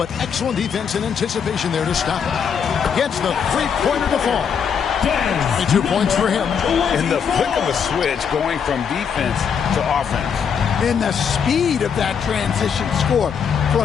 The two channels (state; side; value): quieter; right; 7.0 dB